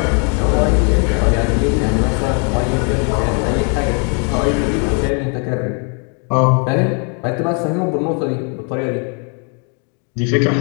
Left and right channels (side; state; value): right; quieter; 38.9 dB